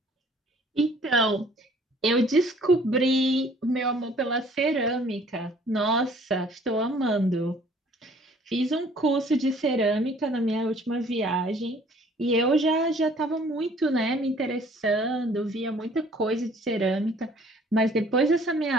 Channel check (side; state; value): both; normal; correlation 0.56